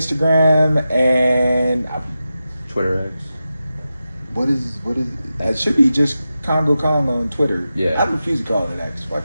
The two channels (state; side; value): inverted; both; correlation -0.92